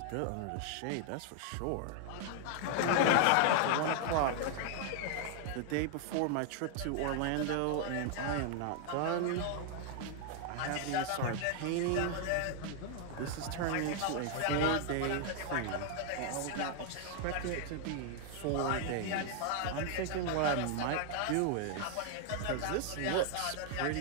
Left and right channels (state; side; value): different; both; correlation 0.00